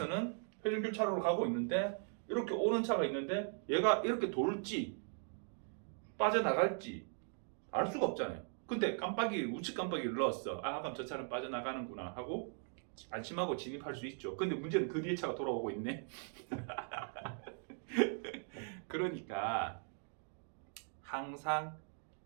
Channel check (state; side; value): silent; left; 52 dB below the other